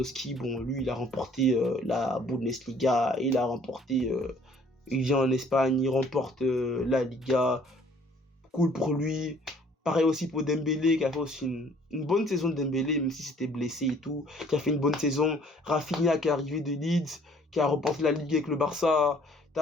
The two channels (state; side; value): normal; both; correlation 0.58